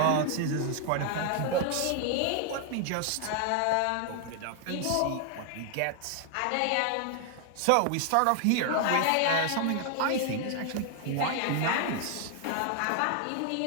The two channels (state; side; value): different; both; correlation 0.00